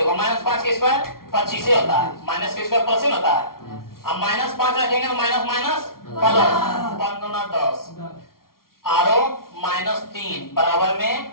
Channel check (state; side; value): late; right; 0.93 ms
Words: माइनस 5 के स्क्वायर 25 से होता है, माइनस के स्क्वायर प्लस होता है, अब माइनस 5 रखेंगे तो माइनस माइनस प्लस 5 गुना 10 आरो माइनस 3 बराबर में